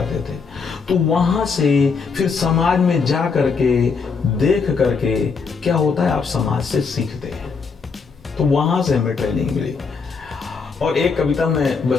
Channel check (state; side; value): quieter; right; 5.1 dB